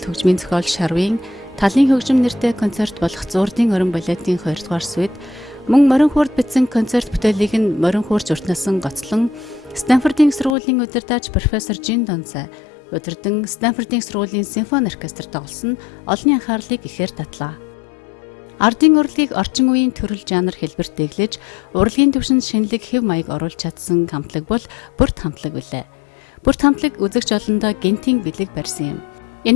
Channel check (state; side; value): drops out; right; at 10.6 s